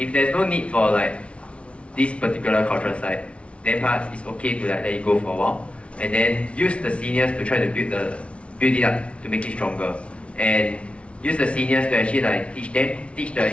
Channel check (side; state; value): right; late; 0.061 ms